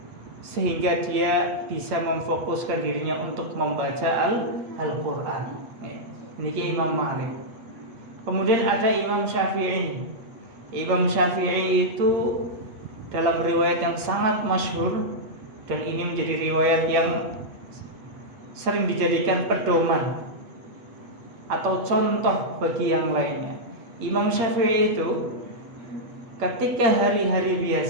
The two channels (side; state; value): left; late; 8.6 ms